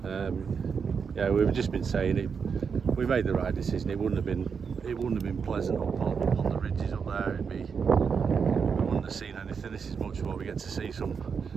Yeah, we've just been saying it. We made the right decision. It wouldn't have been pleasant up on the ridges up there. We wouldn't have seen anything. This is much more. We get to see some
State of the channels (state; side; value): quieter; left; 6.1 dB